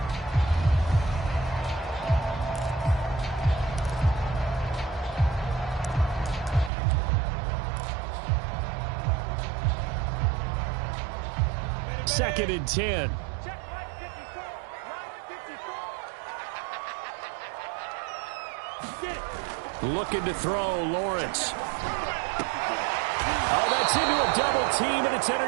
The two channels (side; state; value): left; drops out; at 6.7 s